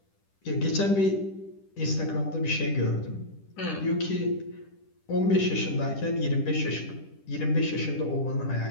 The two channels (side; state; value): right; late; 10 ms